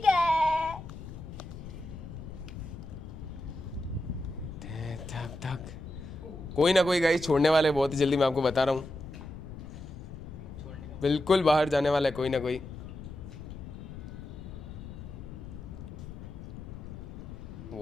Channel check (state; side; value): noise; left; rumble, 11 dB below the sound